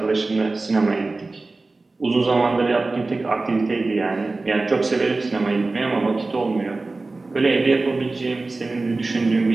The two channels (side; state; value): left; quieter; 3.4 dB